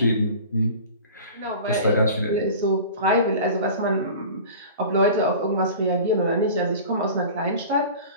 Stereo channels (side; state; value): both; inverted; correlation -0.39